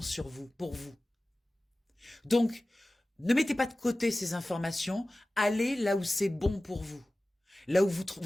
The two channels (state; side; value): normal; both; correlation 0.97